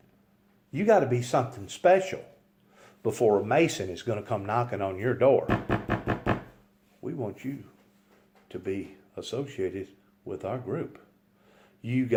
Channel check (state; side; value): identical; both; correlation 1.00